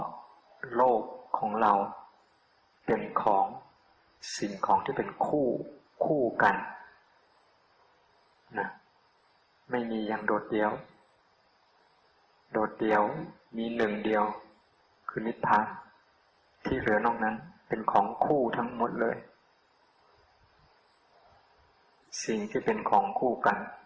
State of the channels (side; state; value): both; identical; correlation 1.00